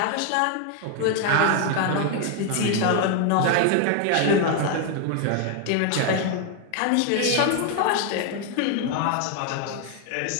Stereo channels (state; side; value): different; both; correlation 0.01